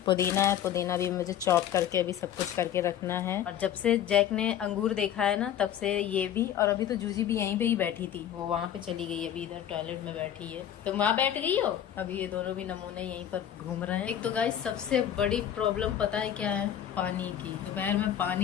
है, पुदीना भी मुझे चॉप करके अभी सब कुछ करके रखना है। और जब से जैक ने अंगूर देखा है ना, तब से ये भी। और अभी तो जूजी भी यहीं पे ही बैठी थी, वो वहाँ पे चली गई, अभी इधर टॉयलेट में बैठी है। तो वहाँ बैठ गई हो? अभी ये दोनों भी नमूने यहीं पर घूम रहे हैं। एक तो गाइस सबसे बड़ी प्रॉब्लम पता है क्या है? पानी की। दोपहर में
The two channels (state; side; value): quieter; right; 10.3 dB